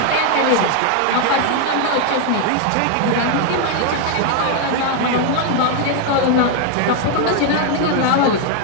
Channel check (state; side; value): different; both; correlation 0.00